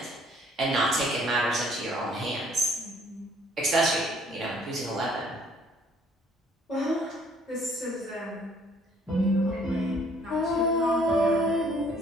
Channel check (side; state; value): both; normal; correlation 0.60